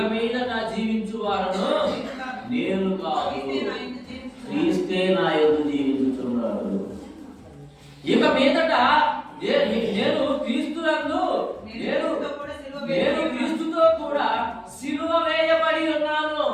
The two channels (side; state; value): both; identical; correlation 1.00